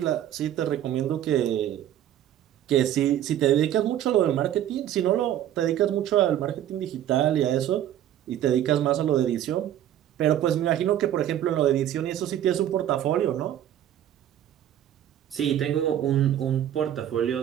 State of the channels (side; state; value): left; quieter; 11.4 dB